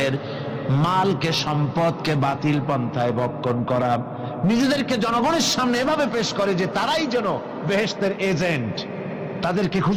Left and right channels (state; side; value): identical; both; correlation 1.00